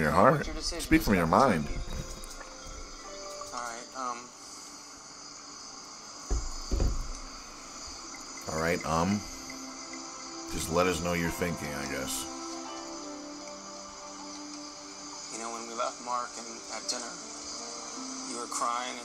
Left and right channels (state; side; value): identical; both; correlation 1.00